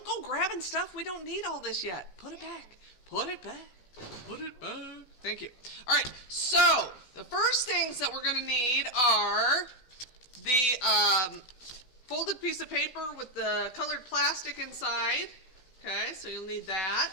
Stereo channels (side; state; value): right; late; 16 ms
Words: go grabbing stuff. We don't need all this yet. Put it back. Put it back. Put it back. Thank you. All right, so the first things that we're going to need are the folded piece of paper with the colored plastic inside. Okay, so you'll need that.